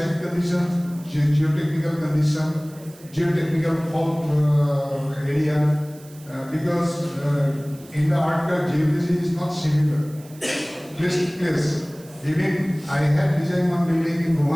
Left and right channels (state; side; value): noise; right; hiss, 23 dB below the sound